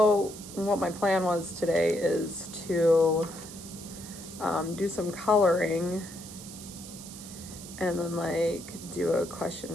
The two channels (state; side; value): noise; right; hiss, 14 dB below the sound